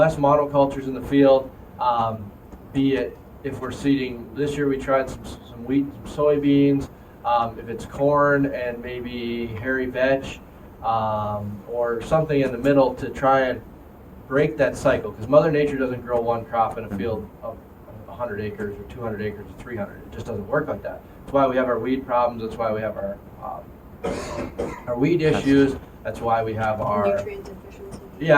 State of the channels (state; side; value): identical; both; correlation 1.00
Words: in the field, be it if we're seeding, this year we tried some wheat, some soybeans, if it's corn and maybe hairy veg, or something in the middle to try and break that cycle, because Mother Nature doesn't grow one crop in a field of 100 acres or 200 acres or 300. It just doesn't work like that. That's why we have our weed problems. That's why we have our weed issues. That's why we have our Nutrient deficiency.